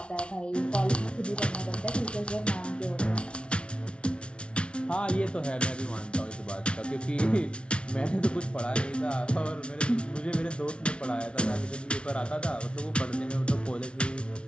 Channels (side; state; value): right; late; 0.058 ms